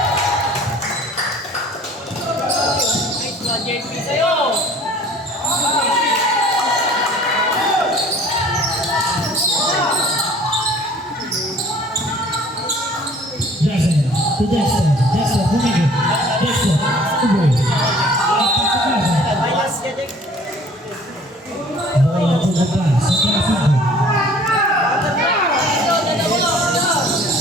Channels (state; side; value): normal; both; correlation 0.51